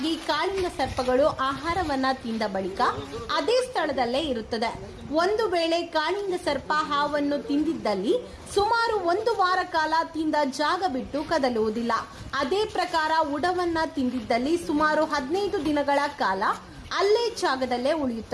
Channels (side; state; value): both; identical; correlation 1.00